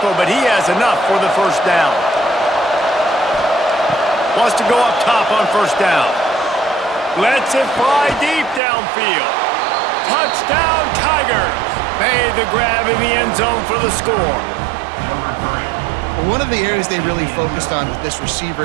but he has enough for the first down. Wants to go up top on first down. Lets it fly deep downfield. Touchdown, Tigers! Made the grab in the end zone for the score. One of the areas they really focused on with this receiver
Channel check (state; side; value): drops out; left; at 8.6 s